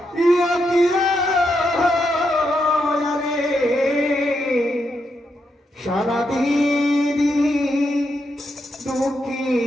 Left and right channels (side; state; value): both; normal; correlation 0.82